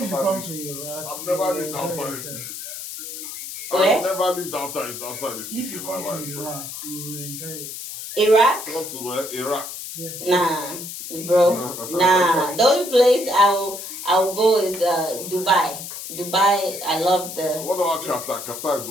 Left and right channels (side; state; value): left; noise; hiss, 9 dB below the sound